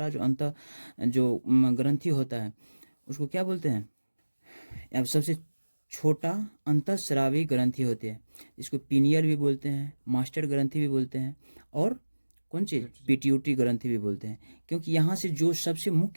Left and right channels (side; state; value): both; inverted; correlation -1.00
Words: जो ग्रंथि होता है उसको क्या बोलते हैं, अब सबसे छोटा अंतःस्रावी ग्रंथि होती है। इसको पीनियल भी बोलते हैं, मास्टर ग्रंथि भी बोलते हैं, और कौन चीज़, पिट्यूटरी ग्रंथि भी बोलते हैं। क्योंकि यहाँ से जो सबसे